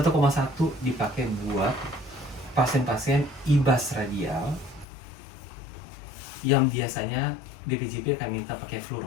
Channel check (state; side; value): drops out; right; at 4.9 s